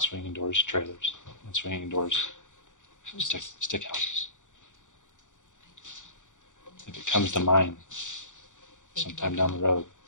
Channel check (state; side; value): late; right; 0.86 ms